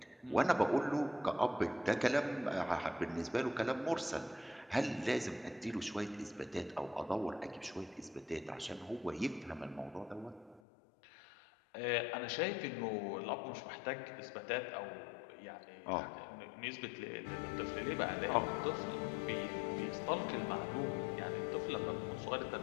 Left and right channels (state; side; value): drops out; right; at 10.6 s